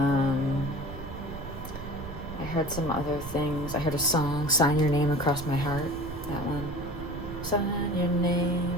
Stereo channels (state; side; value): noise; right; rumble, 11 dB below the sound